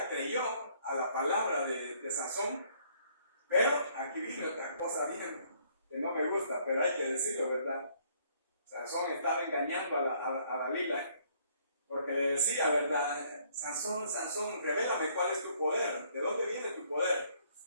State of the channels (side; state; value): both; inverted; correlation -0.64